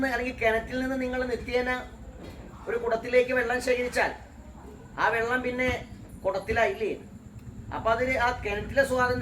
അല്ലെങ്കിൽ കിണറ്റിൽ നിന്ന് നിങ്ങൾ നിത്യേന ഒരു കുടത്തിലേക്ക് വെള്ളം ശേഖരിച്ചാൽ ആ വെള്ളം പിന്നെ കുടത്തിലായില്ലേ? അപ്പം അതിന് ആ കിണറ്റിലെ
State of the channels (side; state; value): both; identical; correlation 1.00